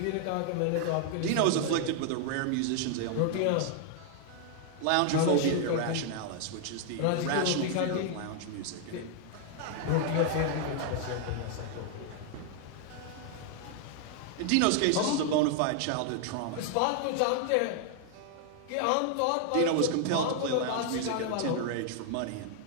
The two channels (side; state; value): both; different; correlation 0.00